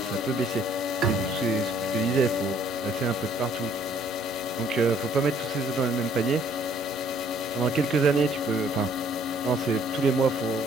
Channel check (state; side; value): normal; both; correlation 0.62